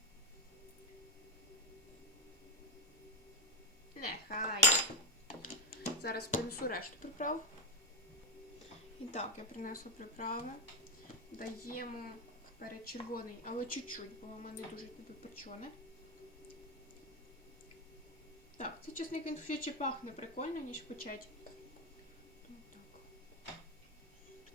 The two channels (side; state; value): both; normal; correlation 0.05